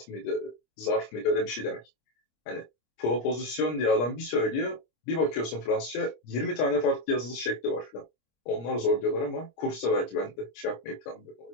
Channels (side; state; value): right; late; 25 ms